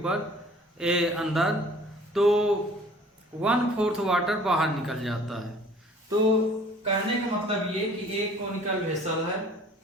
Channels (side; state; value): both; normal; correlation 0.51